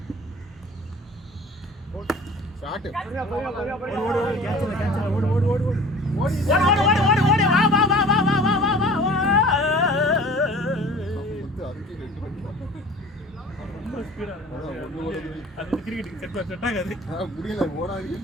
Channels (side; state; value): both; normal; correlation 0.44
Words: ஷாட் முடியல ஓடாதுன்னு